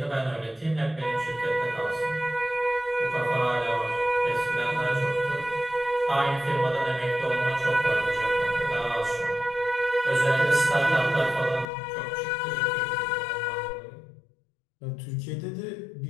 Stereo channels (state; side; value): drops out; right; at 11.7 s